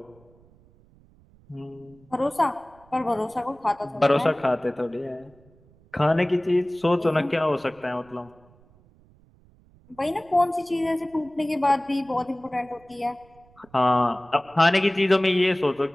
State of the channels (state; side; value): noise; right; rumble, 29 dB below the sound